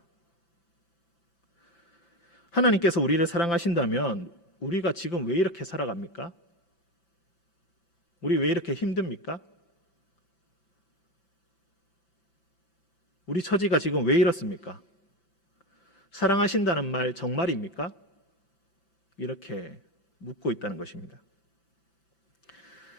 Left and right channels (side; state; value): right; late; 5.9 ms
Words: 하나님께서 우리를 사랑하신다면 우리가 지금 왜 이렇게 살아갑니까? 우리 왜 이렇게 힘듭니까? 우리 처지가 지금 왜 이렇습니까? 사랑하신다는 말 정말입니까? 이렇게 묻고 있다는 것입니다.